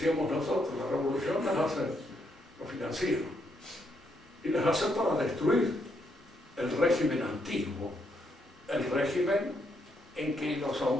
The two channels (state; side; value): normal; both; correlation 0.76